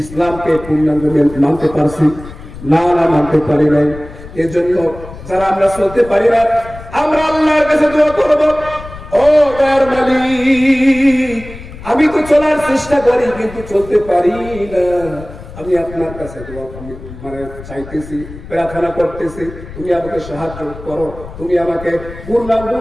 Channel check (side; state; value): left; noise; rumble, 15 dB below the sound